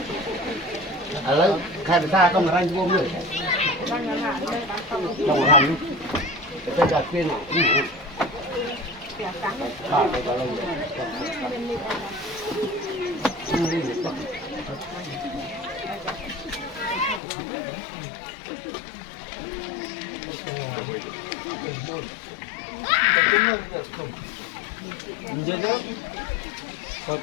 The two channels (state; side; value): drops out; right; at 17.2 s